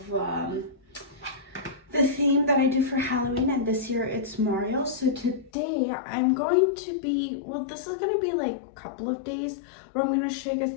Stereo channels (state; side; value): drops out; right; at 5.5 s